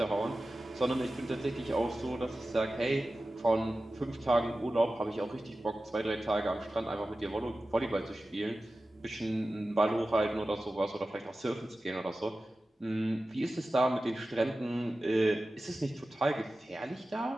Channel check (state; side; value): normal; both; correlation 0.95